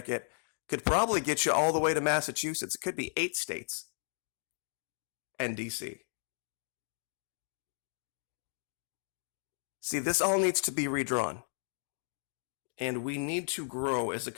Could probably get you all the way to Massachusetts. It could be 8 states and DC. See, this all needs to be redrawn. And we need to grow as a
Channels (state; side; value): silent; right; digital silence